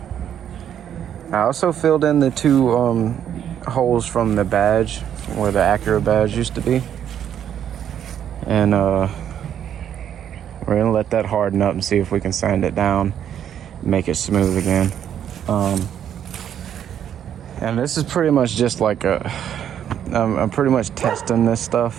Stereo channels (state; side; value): quieter; left; 9.6 dB